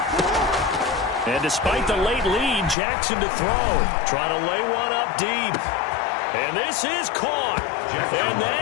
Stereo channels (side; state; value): right; drops out; at 2.8 s